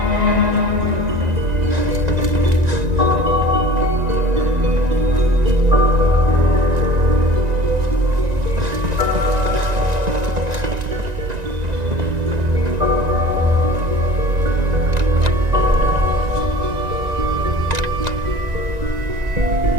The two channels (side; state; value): left; late; 1.9 ms